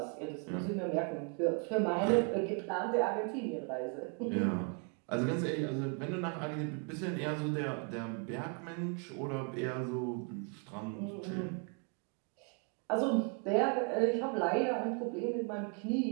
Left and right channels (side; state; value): left; quieter; 36.4 dB